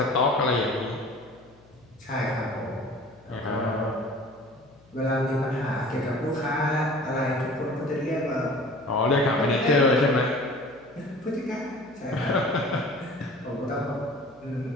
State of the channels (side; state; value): left; noise; hum, 28 dB below the sound